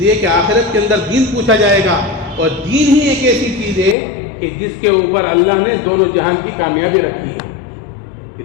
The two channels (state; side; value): drops out; right; at 4.0 s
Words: کہ آخرت کے اندر دین پوچھا جائے گا، اور دین ہی ایک ایسی چیز ہے کہ جس کے اوپر اللہ نے دونوں جہان کی کامیابی رکھی ہے، کہ